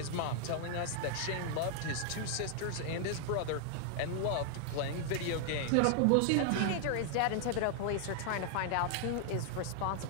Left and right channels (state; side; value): different; both; correlation 0.00